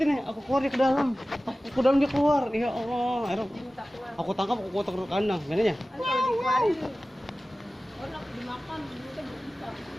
nih. Aku keluar dia ke dalam. Aku dalam dia keluar. Ya Allah. Akhirnya aku tangkap, aku kotak ke kandang. Gimana ya? Enak dimakan, kita bisa.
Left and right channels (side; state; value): both; normal; correlation 0.96